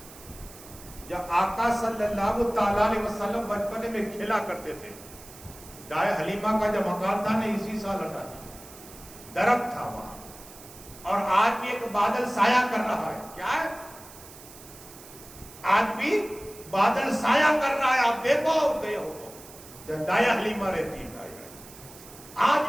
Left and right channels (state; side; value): noise; right; hiss, 18 dB below the sound